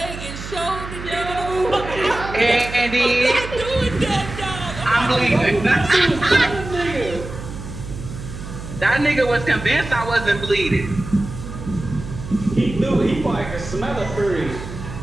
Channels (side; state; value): right; noise; hum, 10 dB below the sound